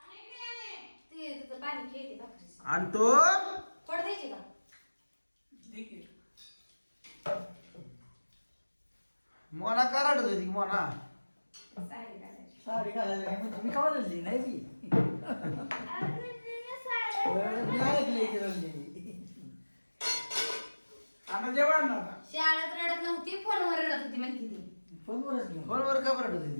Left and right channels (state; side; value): inverted; both; correlation -1.00